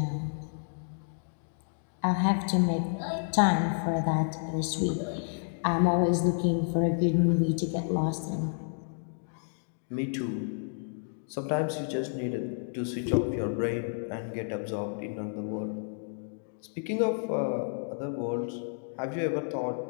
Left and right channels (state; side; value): silent; right; digital silence